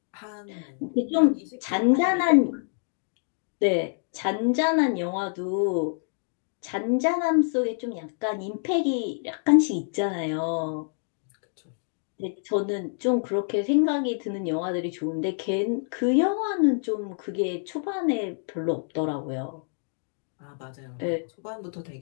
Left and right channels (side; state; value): right; silent; digital silence